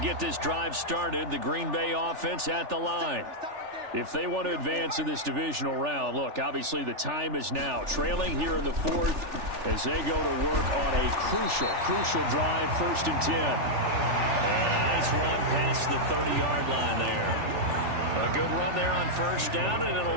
this drive started, the Green Bay offense at the line. If they want to advance in this divisional round, look, obviously the time is now. Trailing here in the 4th as they go to work on a crucial drive, 1st and 10. And a nice run past the 30-yard line there. A good run there on 1st down, and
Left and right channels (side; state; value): left; late; 3.4 ms